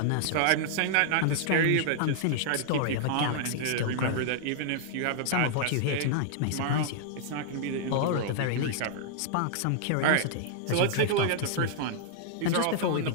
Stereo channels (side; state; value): both; different; correlation -0.01